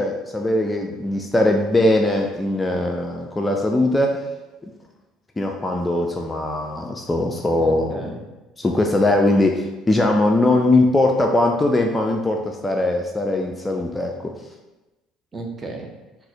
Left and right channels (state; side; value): normal; both; correlation 0.79